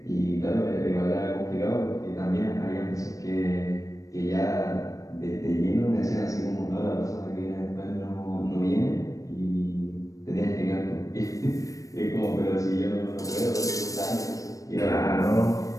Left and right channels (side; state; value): right; late; 0.16 ms